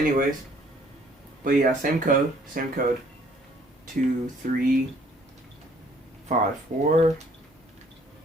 but yeah, same code. 2354.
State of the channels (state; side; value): normal; both; correlation 0.60